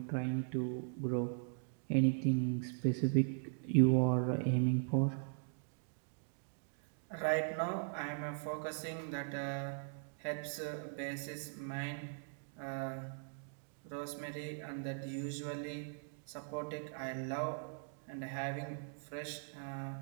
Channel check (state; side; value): silent; left; digital silence